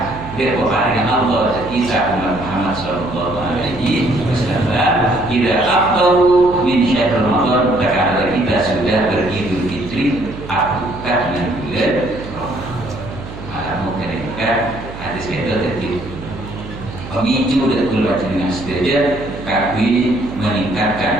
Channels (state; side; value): noise; right; hum, 12 dB below the sound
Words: kepada Allah kita umat Muhammad sallallahu alaihi wasallam tidak afdalu min syahr Ramadan karena kita sudah beridul fitri akukat dengan bulan Ramadan. Malam mereka hadis itu tadi pemicu dan keluar dengan setuju kami